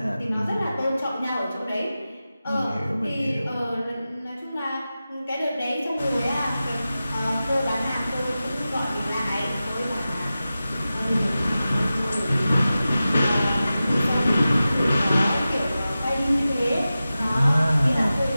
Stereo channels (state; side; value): inverted; both; correlation -0.94